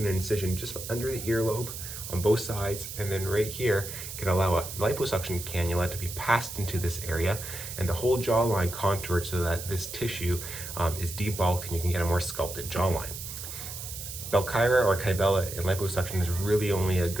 an incision just under the earlobe on both sides, and then right here can allow a liposuction cannula to be passed into this area and the whole jawline contoured so that this tissue is debulked and you can get a more sculpted jawline. Belkyra or Kybella in liposuction is really only a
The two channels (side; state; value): right; noise; hiss, 9 dB below the sound